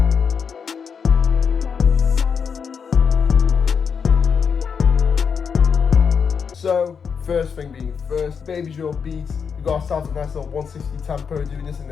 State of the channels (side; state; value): right; quieter; 6.4 dB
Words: So, first thing being first, Babydrill beats. We got ourselves a nice little 160 tempo, doing this in